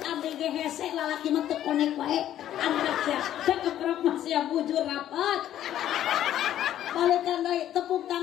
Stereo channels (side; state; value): right; quieter; 11.7 dB